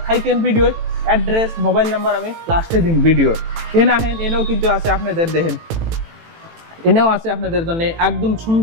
থাকেন ভিডিও, অ্যাড্রেস মোবাইল নাম্বার আমি লাস্টে দিন ভিডিওর। এনে আহেন এনেও কিন্তু আছে আপনাদের দেখেন, এনেও আছে আপনাদের জন্য একদম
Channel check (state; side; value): late; left; 18 ms